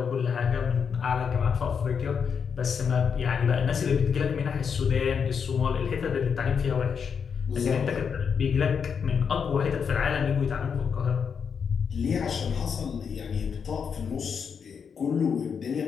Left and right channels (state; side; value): quieter; right; 6.6 dB